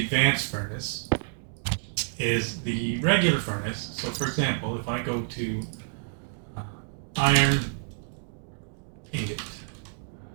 furnace is the regular furnace. So for example, if I go to iron ingot,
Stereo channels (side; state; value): left; silent; digital silence